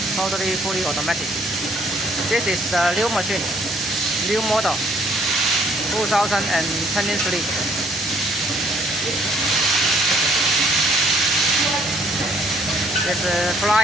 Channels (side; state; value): both; normal; correlation 0.63